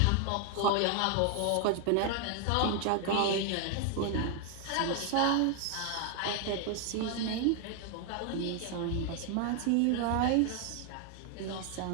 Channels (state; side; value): different; both; correlation 0.00